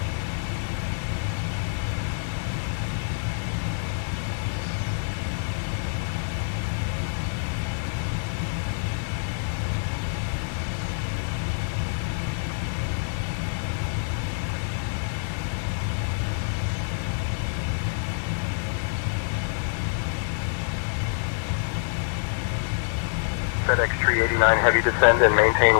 FedEx 389 heavy, descend and maintain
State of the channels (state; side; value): silent; right; digital silence